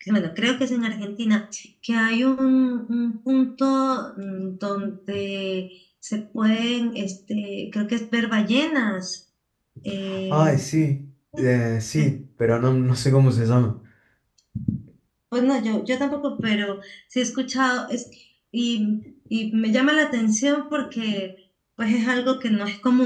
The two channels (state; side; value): identical; both; correlation 1.00